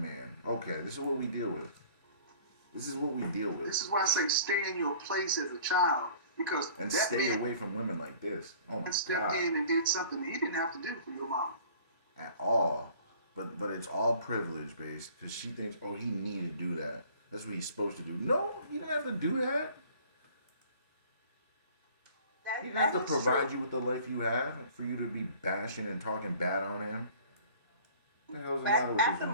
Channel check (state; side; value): inverted; both; correlation -0.50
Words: man. Okay, this is what we deal with. This is what we deal with. This is why I say stay in your place as a child, because And that stay man away from women like this. Oh my stepped God. in and did something he didn't have to do for your mama. At all. But it's all privilege based because she thinks, oh, he needed to do that. That's what he's supposed to do. No, he didn't have to do that. He didn't have to provide you with the life you have for you to be bashing and talking bad on him. What the hell's the matter with At this the